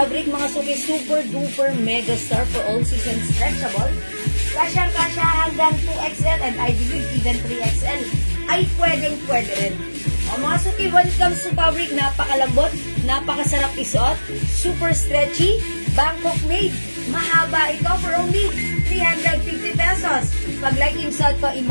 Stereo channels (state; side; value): inverted; both; correlation -1.00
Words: mga suki, super duper mega star for all season stretchable. Kasya hanggang 2XL and I believe even 3XL. Ay pwedeng-pwede rin. O mga suki, when it comes to fabric, napakalambot, napakasarap isuot, super stretchy, Bangkok made. Mahaba ito for only 350 pesos. Pag like yung suot ko,